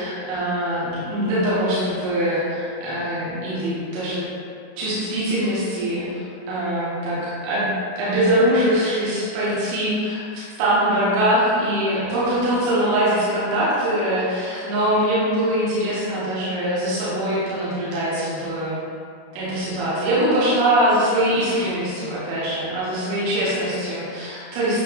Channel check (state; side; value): late; left; 33 ms